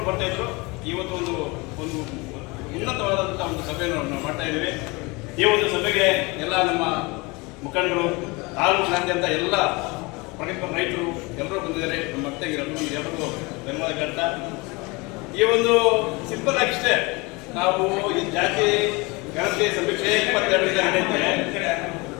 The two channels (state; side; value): quieter; right; 25.8 dB